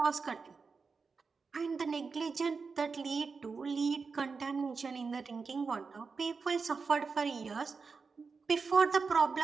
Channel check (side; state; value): left; quieter; 4.8 dB